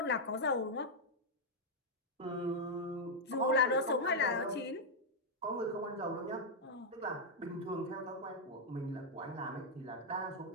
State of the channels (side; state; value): both; normal; correlation -0.02